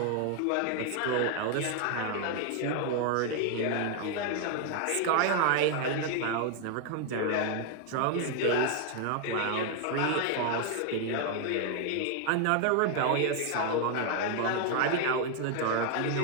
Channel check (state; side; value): different; both; correlation 0.00